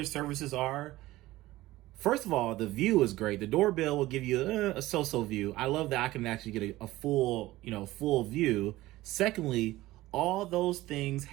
services are. First of all, the view is great. The doorbell will give you a so-so view. I love that I can actually get a full, full view. Secondly, all those things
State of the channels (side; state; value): left; quieter; 17.4 dB